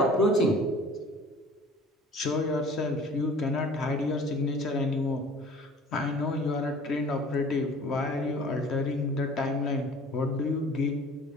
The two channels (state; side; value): normal; both; correlation 0.47